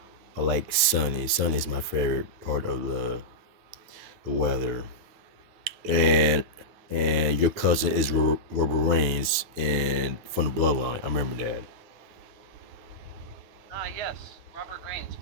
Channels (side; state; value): left; late; 9.2 ms